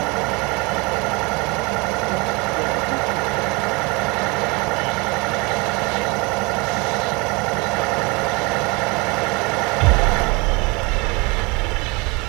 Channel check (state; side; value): quieter; left; 27.2 dB